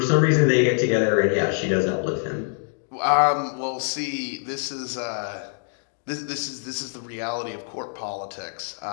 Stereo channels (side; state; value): right; silent; digital silence